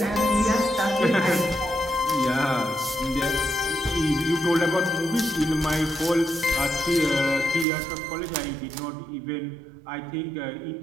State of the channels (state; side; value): drops out; left; at 7.7 s